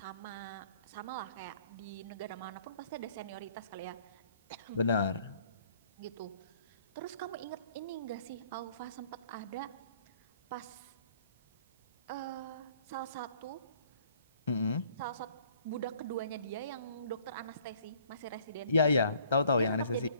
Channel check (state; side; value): inverted; both; correlation -0.58